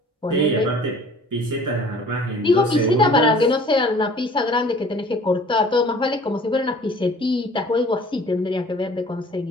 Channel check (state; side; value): normal; both; correlation 0.50